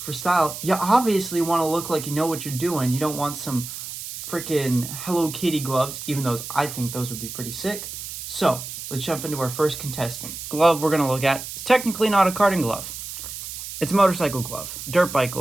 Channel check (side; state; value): right; noise; hiss, 9 dB below the sound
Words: style, you obviously want to look like you know what you're doing. You don't want some freaking Hello Kitty gloves, even though I think those would be pretty sick. So, let's jump into our first contestant. Glove we're going to look at is technically not a karting glove. It's a motorcycle glove, dirt bike